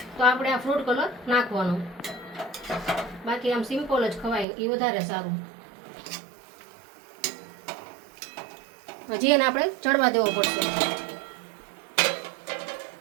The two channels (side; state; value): left; drops out; at 4.5 s